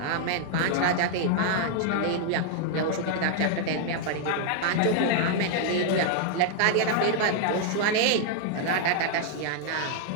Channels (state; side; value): different; both; correlation 0.00